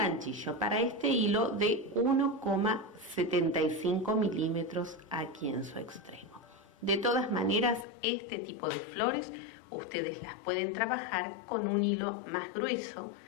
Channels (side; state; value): right; drops out; at 7.9 s